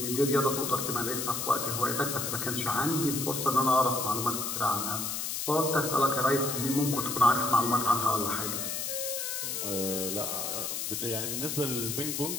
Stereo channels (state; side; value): noise; left; hiss, 3 dB below the sound